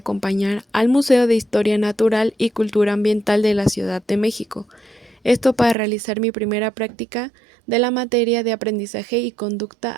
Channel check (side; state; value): left; drops out; at 5.8 s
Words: al Museo de Historia Natural y Cultura Ambiental de la Ciudad de México. Esto para realizar mi primera práctica de la materia de aprendizaje y conducta